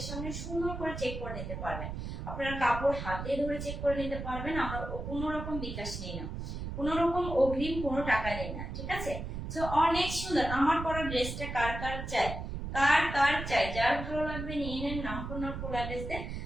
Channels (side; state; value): right; noise; rumble, 6 dB below the sound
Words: সামনে সুন্দর করে চেক করে নিতে পারবেন, আপনারা কাপড় হাতে ধরে চেক করে নিতে পারবেন। আমরা কোনো রকম বিকাশ নেই না, কোনো রকম অগ্রিম কোনো টাকা নেই না, ঠিক আছে। তো অনেক সুন্দর আমার পরা ড্রেসটা কার কার চাই, কার কার চাই, যার ভালো লাগবে নিয়ে নেন। নাম, ফোন নম্বর, ফুল অ্যাড্রেস দিয়ে